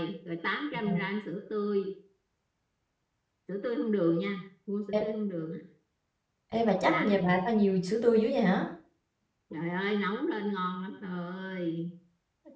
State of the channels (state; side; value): identical; both; correlation 1.00